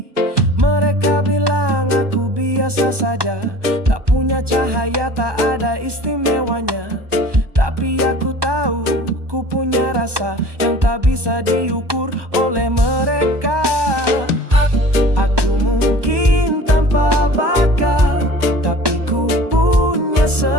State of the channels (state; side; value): late; left; 1.2 ms